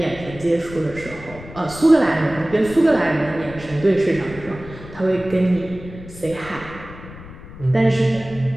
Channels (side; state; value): left; noise; rumble, 16 dB below the sound